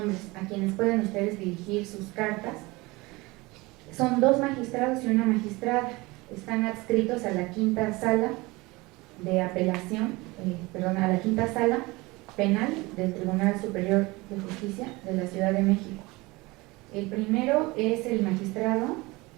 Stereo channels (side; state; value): left; quieter; 22.8 dB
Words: a quienes pueden ustedes dirigir sus cartas, son 2 magistrados y una magistrada. Están adscritos a la quinta sala de apelación, a la quinta sala penal del Tribunal Superior de Justicia de la Ciudad de México. El primero es el magistrado